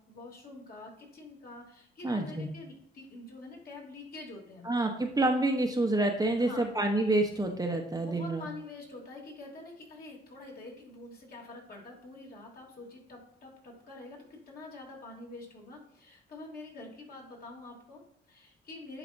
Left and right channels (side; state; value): both; normal; correlation 0.65